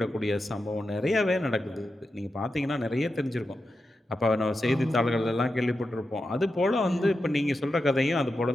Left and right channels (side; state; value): both; normal; correlation 0.89